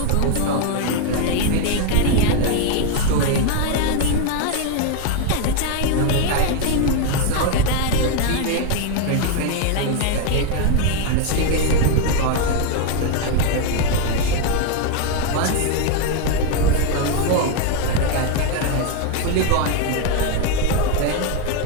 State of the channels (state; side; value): different; both; correlation 0.01